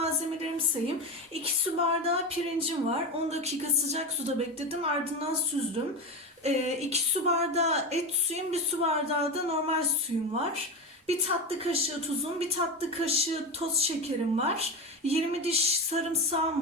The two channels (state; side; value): normal; both; correlation 0.20